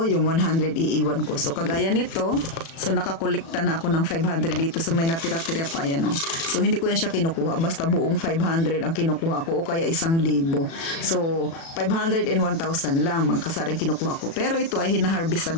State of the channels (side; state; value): right; late; 36 ms